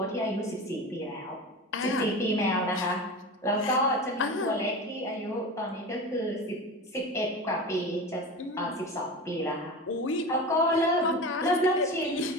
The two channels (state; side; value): normal; both; correlation 0.29